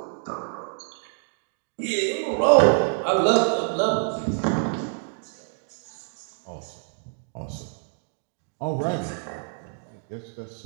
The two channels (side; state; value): left; silent; 59 dB below the other